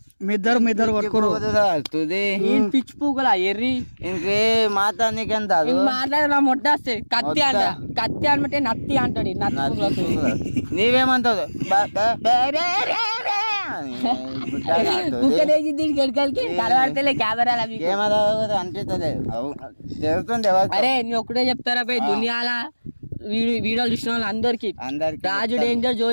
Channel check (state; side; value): inverted; both; correlation -1.00